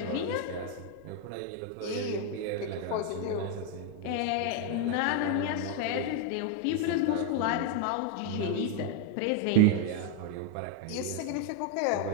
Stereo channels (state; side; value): different; both; correlation 0.01